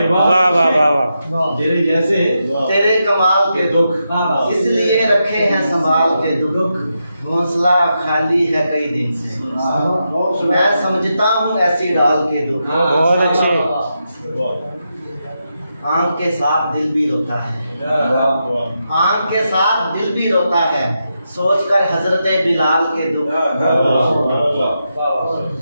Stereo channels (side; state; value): both; inverted; correlation -0.85